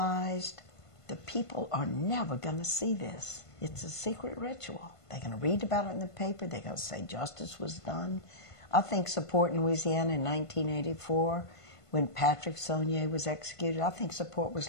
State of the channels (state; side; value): late; right; 1.5 ms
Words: the people are never going to see this. It's a secret ritual. They're going to read about it in the paper. They're going to say justice was done. I think support in Louisiana in 1984, when Patrick Saunier was executed, I think support was